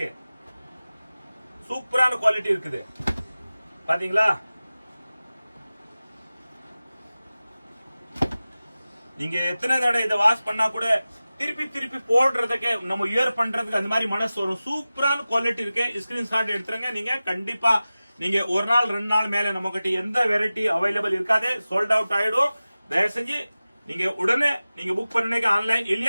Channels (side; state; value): both; inverted; correlation -0.96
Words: சூப்பரான குவாலிட்டி இருக்குது பாத்தீங்களா. நீங்க எத்தனை தடவை இதை வாஷ் பண்ணா கூட திருப்பி போடுறதுக்கு நம்ம இயர் பண்றதுக்கு அந்த மாதிரி மனசு வரும். சூப்பரான குவாலிட்டி இருக்கு. ஸ்கிரீன்ஷாட் எடுத்துருங்க. நீங்க கண்டிப்பா நீங்க ஒரு நாள் 2 நாள் மேல நம்ம கிட்ட எந்த வெரைட்டி அவைலபிள் இருக்காது, சோல்ட் அவுட் ஆயிடும். தயவு செஞ்சு நீங்க உடனே நீங்க புக் பண்ணீங்க ஆன்லைன்,